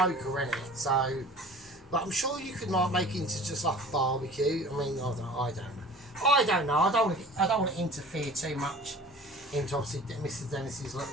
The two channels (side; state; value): both; normal; correlation 0.44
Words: isn't it? So, but I'm sure you could like make it into just like a barbecue. I mean, I don't know. I don't want to interfere too much into obviously Mr. Dennis's